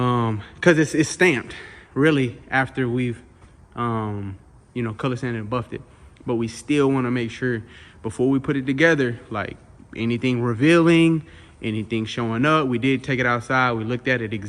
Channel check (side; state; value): both; identical; correlation 1.00